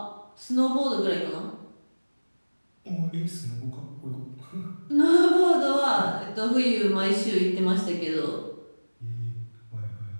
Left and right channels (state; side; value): inverted; both; correlation -1.00